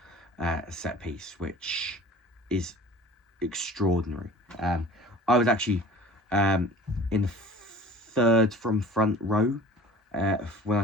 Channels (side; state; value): both; normal; correlation 0.44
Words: set piece, which is extraordinary. I was actually in the third from front row when